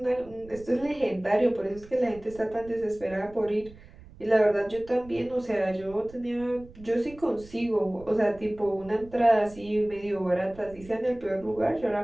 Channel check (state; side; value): noise; right; rumble, 20 dB below the sound